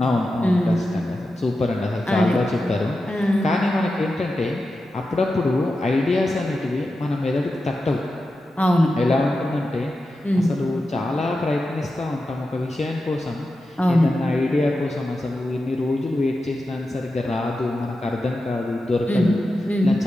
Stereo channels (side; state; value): both; normal; correlation 0.91